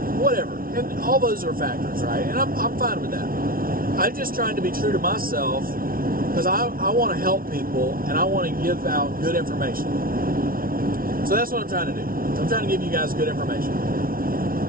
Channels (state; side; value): late; left; 0.42 ms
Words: whatever. And all those are factors, right? And I'm fine with that. I'm just trying to be true to myself, because I want to help people, and I want to give out good information. So that's what I'm trying to do. I'm trying to give you guys good information.